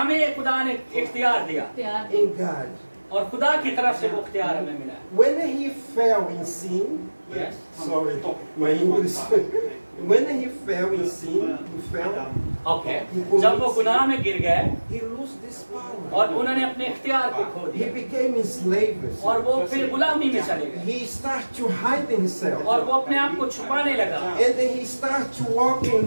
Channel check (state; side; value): inverted; both; correlation -1.00